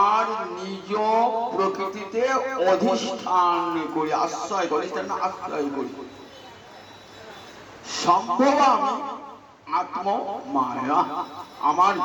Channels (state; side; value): identical; both; correlation 1.00